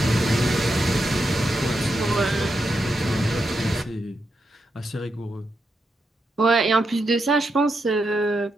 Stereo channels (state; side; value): normal; both; correlation 0.84